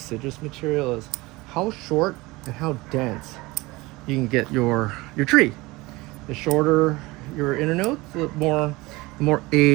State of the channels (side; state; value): left; quieter; 21.8 dB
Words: material, is how short and how dense you can get your tree. The shorter your internodes, the more